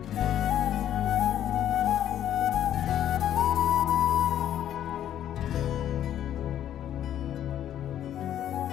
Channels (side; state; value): right; quieter; 10.9 dB